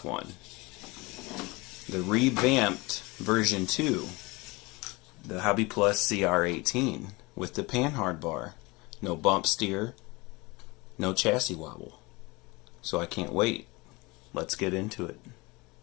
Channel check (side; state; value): right; quieter; 24.3 dB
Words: one. The revamped version 2, the Hobby Plus CR-18 with the panhard bar. No bump steer, no chassis wobble. So I can't wait. Let's get into it.